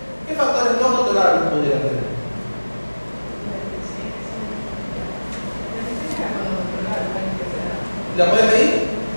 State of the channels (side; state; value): both; inverted; correlation -1.00